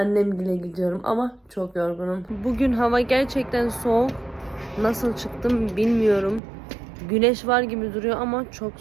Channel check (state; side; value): drops out; left; at 6.4 s